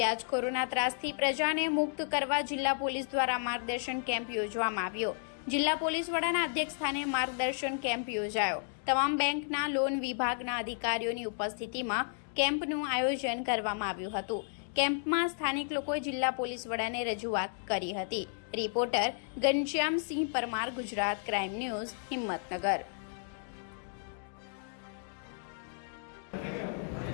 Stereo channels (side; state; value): right; silent; digital silence